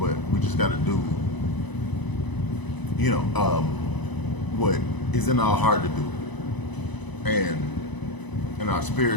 we just got to do, you know, what is in our heart to do. And in our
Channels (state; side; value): late; right; 1.0 ms